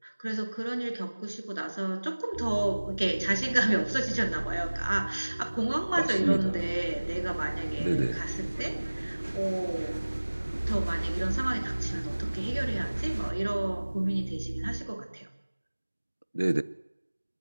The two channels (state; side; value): inverted; both; correlation -1.00